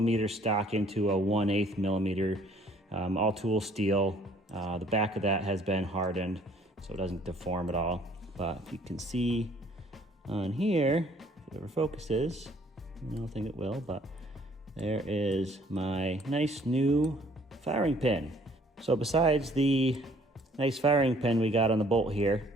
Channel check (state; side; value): normal; both; correlation 0.59